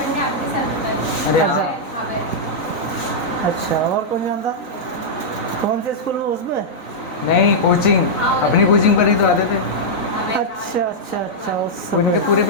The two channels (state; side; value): late; right; 3.9 ms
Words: अरे अच्छा अच्छा, और कौन जानता? कौन से स्कूल में? उसमें? नहीं, कोचिंग, अपनी कोचिंग पर ही तो आते थे। अच्छा अच्छा अच्छा, उस उनके पूरी